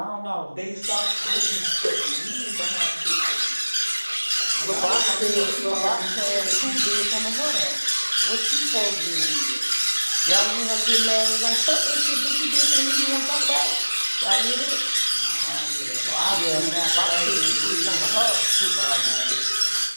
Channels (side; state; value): both; inverted; correlation -1.00